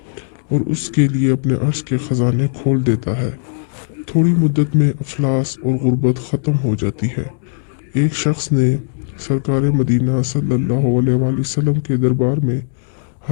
और उसके लिए अपने अर्श के ख़जाने खोल देता है। थोड़ी मुद्दत में अफलास और गुर्बत ख़त्म हो जाती है। एक शख्स ने सरकार मदीना सल्लल्लाहु अलैहि वसल्लम के दरबार में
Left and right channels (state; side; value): silent; right; 68 dB below the other